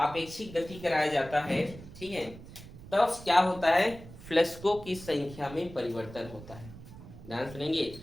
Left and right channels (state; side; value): noise; right; rumble, 16 dB below the sound